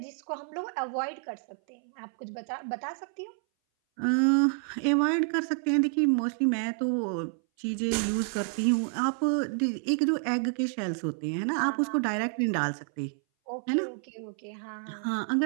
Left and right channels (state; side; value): silent; left; 58 dB below the other